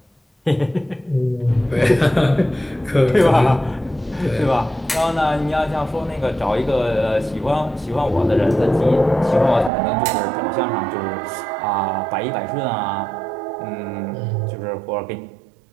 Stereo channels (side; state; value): left; drops out; at 9.7 s